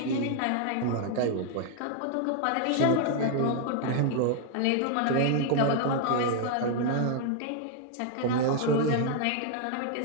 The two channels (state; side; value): different; both; correlation 0.00